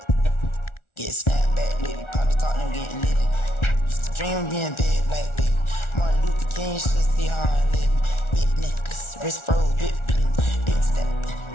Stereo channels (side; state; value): right; late; 1.4 ms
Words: Dream being big like big. Martin Luther King should see how I live. Big necklace, wrist froze, big step,